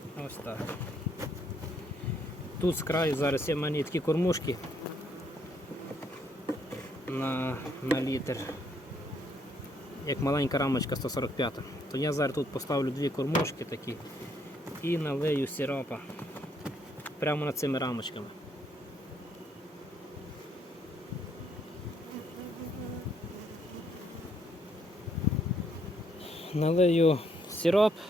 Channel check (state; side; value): normal; both; correlation 0.71